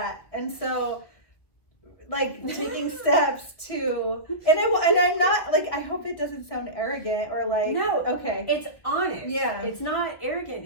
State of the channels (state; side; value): late; right; 1.7 ms